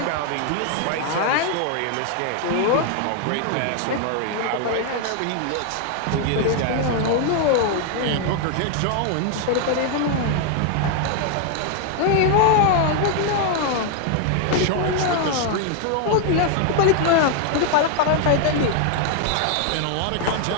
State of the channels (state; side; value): different; both; correlation 0.00